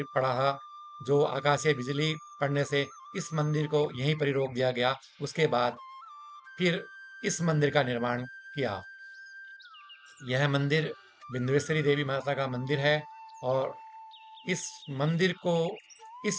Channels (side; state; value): both; identical; correlation 1.00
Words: पड़ा था, जो आकाशीय बिजली पड़ने से इस मंदिर को यहीं पर ही रोक दिया गया। उसके बाद फिर इस मंदिर का निर्माण किया। यह मंदिर बिंदुएश्वरी देवी माता का मंदिर है, और इस मंदिर को